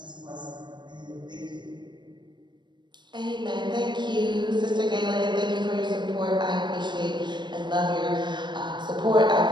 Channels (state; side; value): late; left; 0.22 ms